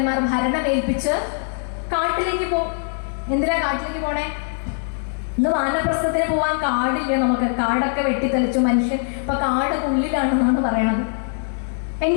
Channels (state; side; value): silent; right; 60 dB below the other